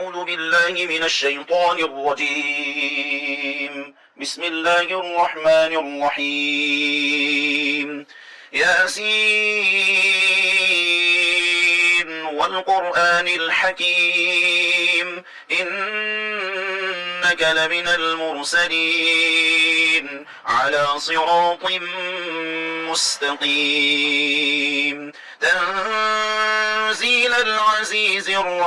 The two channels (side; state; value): both; identical; correlation 1.00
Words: بالله من الشيطان الرجيم. بسم الله الرحمن الرحيم. ياسين والقرآن الحكيم إنك لمن المرسلين على صراط مستقيم تنزيل العزيز